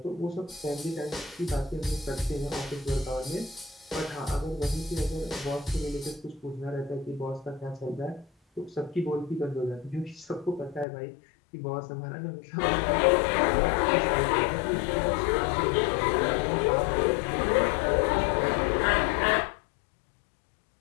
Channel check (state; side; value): drops out; right; at 10.9 s